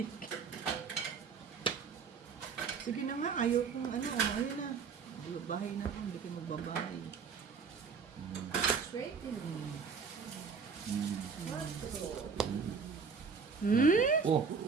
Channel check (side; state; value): left; quieter; 5.6 dB